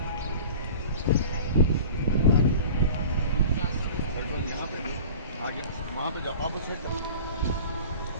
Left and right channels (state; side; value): inverted; both; correlation -0.40